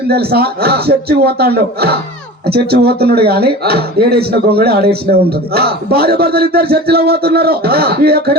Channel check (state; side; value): normal; both; correlation 0.36